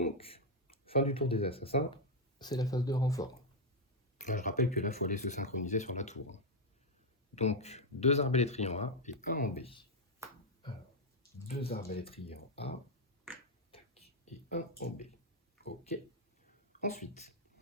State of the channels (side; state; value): both; normal; correlation 0.01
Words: fin du tour des assassins, c'est la phase de renfort. Là, je rappelle que là, il faut aller se synchroniser sur la tour. Donc, 2 arbalétriers en A et 1 en B. Alors, 2 arbalétriers en A, tac, et 1 en B. Ok. Ensuite,